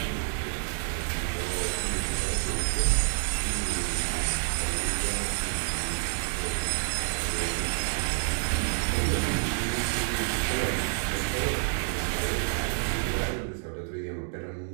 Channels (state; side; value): silent; left; 59 dB below the other